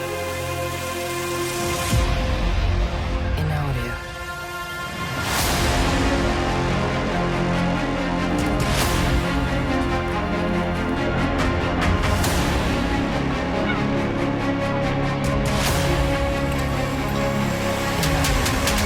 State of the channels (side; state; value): both; identical; correlation 1.00